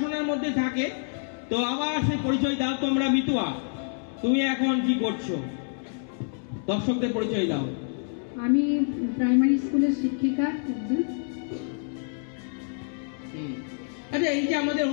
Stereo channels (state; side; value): silent; right; digital silence